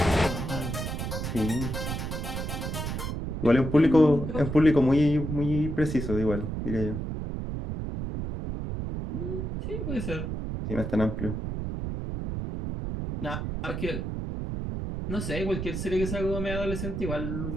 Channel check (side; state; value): right; noise; rumble, 4 dB below the sound